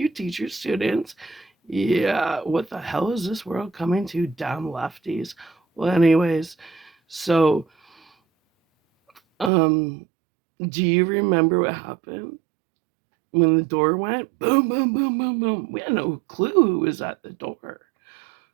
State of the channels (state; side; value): drops out; left; at 9.5 s